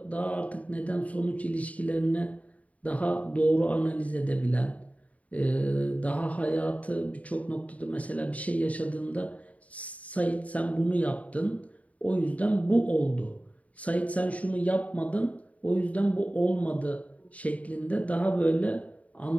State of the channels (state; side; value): late; right; 0.068 ms